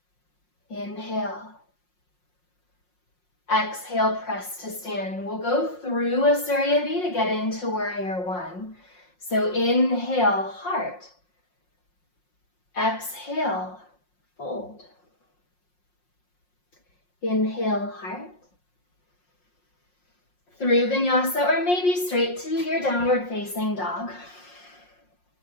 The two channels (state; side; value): late; right; 5.6 ms